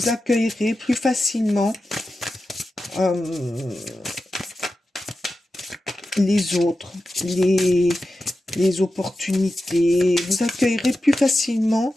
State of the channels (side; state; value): both; normal; correlation 0.92